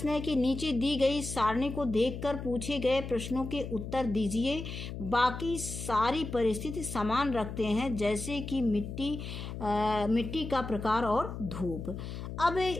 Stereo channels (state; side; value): noise; left; hum, 8 dB below the sound